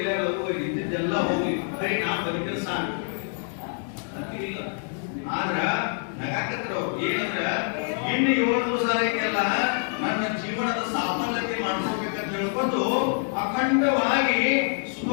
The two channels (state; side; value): silent; right; 61 dB below the other